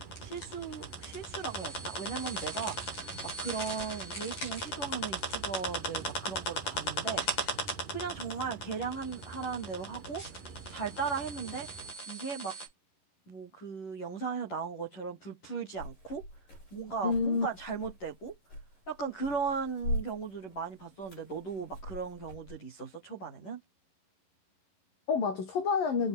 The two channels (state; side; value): late; right; 11 ms